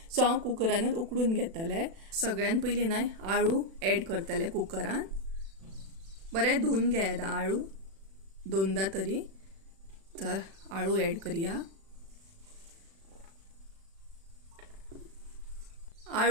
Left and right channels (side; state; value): left; late; 36 ms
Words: सो हांव कुकरानूच उकडून घेतले. सगळ्यान पयलीं न्हय आळू एड करतले कुकरान. बरें धुवन घेयात आळू 2दा तरी. तर आळू एड करया.